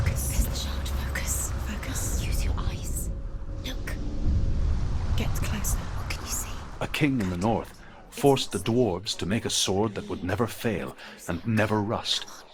There's the shard. Focus. Focus. Use your eyes. Look. Get closer. What can you see? A king in the north forced the dwarves to make a sword that would never fail and never rust,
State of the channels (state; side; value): identical; both; correlation 1.00